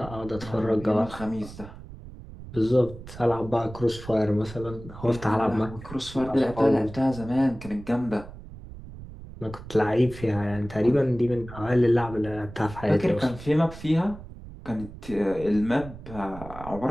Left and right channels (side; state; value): right; noise; rumble, 14 dB below the sound